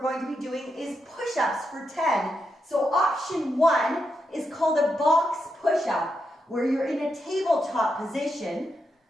going to be doing is push-ups for 10. So option 1 is called a box push-up, where you're in a tabletop position.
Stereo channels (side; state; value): both; normal; correlation 0.84